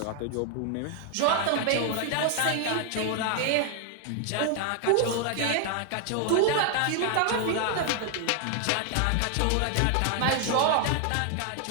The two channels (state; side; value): different; both; correlation 0.00